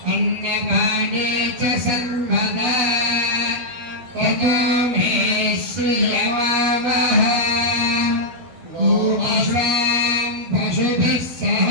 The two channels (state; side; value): late; left; 12 ms